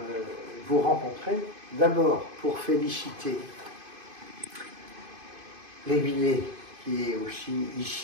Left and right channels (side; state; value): left; late; 2.5 ms